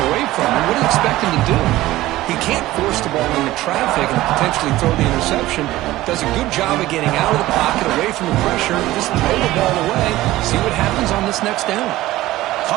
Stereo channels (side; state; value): left; quieter; 16.6 dB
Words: away from him. What do you expect him to do? He can't force the ball into traffic and potentially throw the interception. Does a good job of getting out of the pocket, away from the pressure, just throw the ball away. See what happens on this next down.